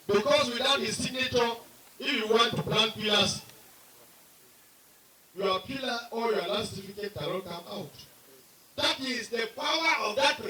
Because without his signature, if you want to plant pillars, your pillar or your land certificate cannot come out. That is the power of that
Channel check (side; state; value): both; identical; correlation 1.00